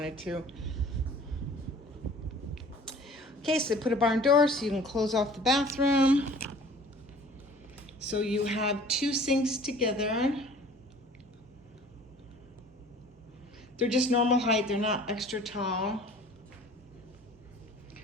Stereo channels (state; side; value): normal; both; correlation 0.48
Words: to. Okay, so they put a barn door so you can close off the bathroom. So you have two sinks together. They're just normal height, they're not extra tall.